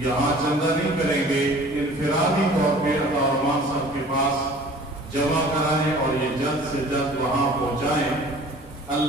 چندہ نہیں کریں گے، انفرادی طور پہ عطا الرحمان صاحب کے پاس جمع کرائیں اور یہ جلد سے جلد وہاں پہنچائیں۔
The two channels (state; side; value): normal; both; correlation 0.47